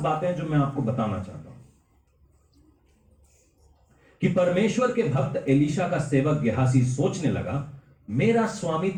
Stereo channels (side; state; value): both; identical; correlation 1.00